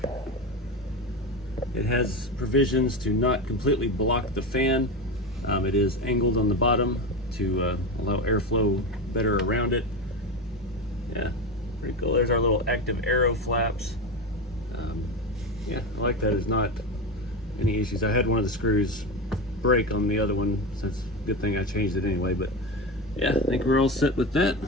It has provisions to not completely block the fan. It is angled on the bottom to allow airflow better around it. Yeah, pretty cool. There's our little active arrow flaps. Yeah, I like that. There's not any issues. I had one of the screws break on the other one, so it's a good thing I changed it anyway. But yeah, I think we're all set with that.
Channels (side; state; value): both; normal; correlation 0.20